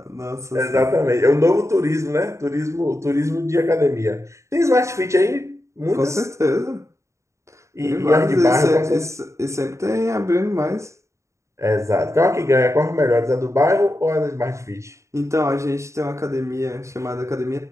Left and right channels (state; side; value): late; left; 0.14 ms